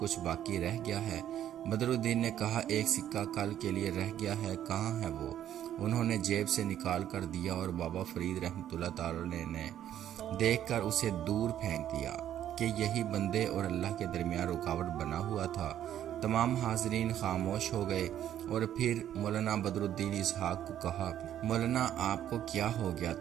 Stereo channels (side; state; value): left; quieter; 11.1 dB